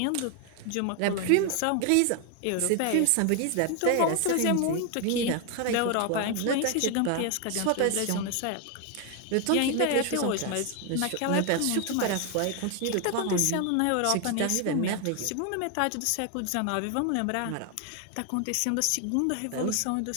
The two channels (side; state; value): both; different; correlation 0.00